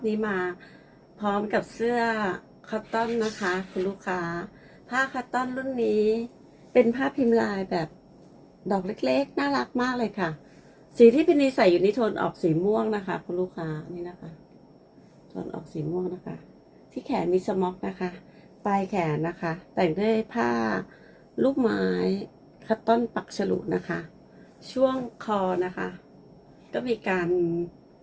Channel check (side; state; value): both; identical; correlation 1.00